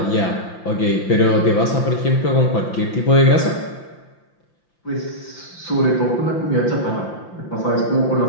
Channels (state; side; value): late; right; 5.8 ms